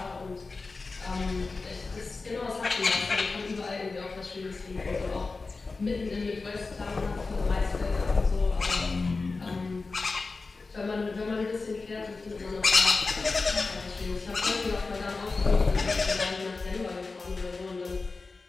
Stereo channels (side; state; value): right; quieter; 3.9 dB